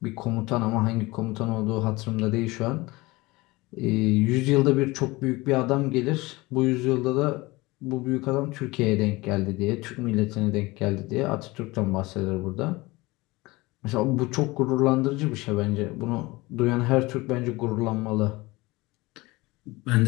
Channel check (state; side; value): quieter; right; 21.9 dB